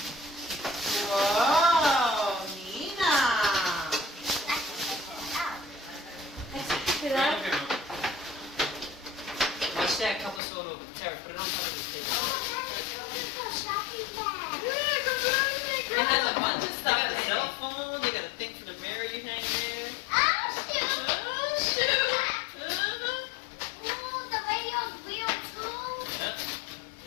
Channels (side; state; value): right; drops out; at 10.4 s